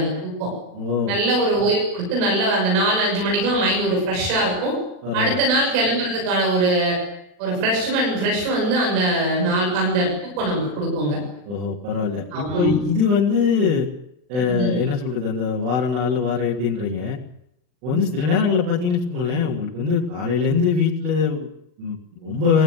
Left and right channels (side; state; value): left; late; 40 ms